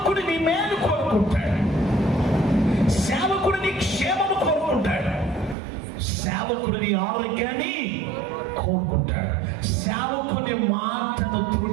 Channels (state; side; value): drops out; left; at 5.6 s